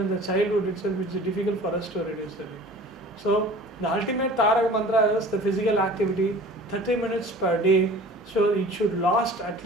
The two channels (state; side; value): normal; both; correlation 0.44